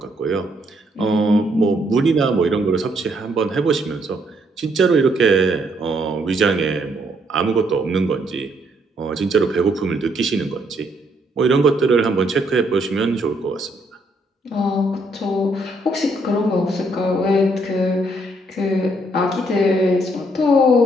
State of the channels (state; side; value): normal; both; correlation 0.71